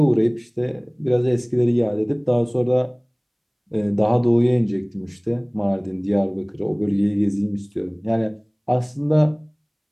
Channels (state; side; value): identical; both; correlation 1.00